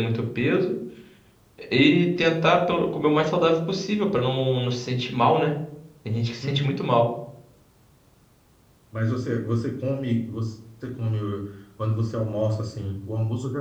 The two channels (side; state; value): both; identical; correlation 1.00